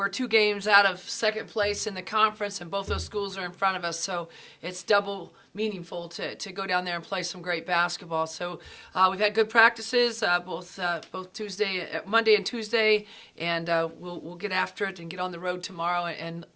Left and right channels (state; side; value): identical; both; correlation 1.00